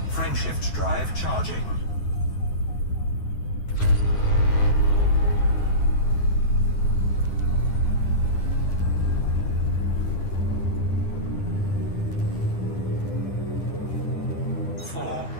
Frameshift drive charging. Four,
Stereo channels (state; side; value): late; right; 9.9 ms